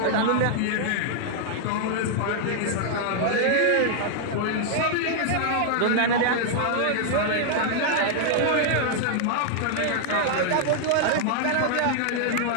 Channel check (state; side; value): different; both; correlation -0.01